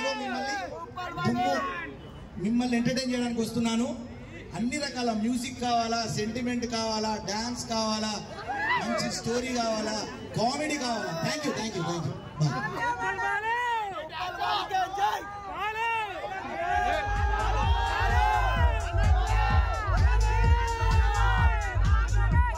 మిమ్మల్ని ఎంటర్టైన్ చేయడానికి వస్తున్నాను. అన్ని రకాల మ్యూజిక్ కావాలా, సెంటిమెంట్ కావాలా, డాన్స్ కావాలా, మంచి స్టోరీ కావాలా, కామెడీ కావాలా. Thank you. బాయ్.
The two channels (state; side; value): identical; both; correlation 1.00